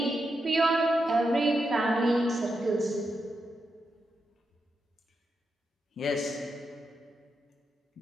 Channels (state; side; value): normal; both; correlation 0.86